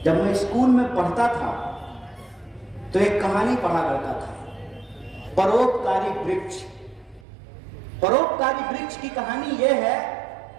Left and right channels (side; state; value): left; drops out; at 7.2 s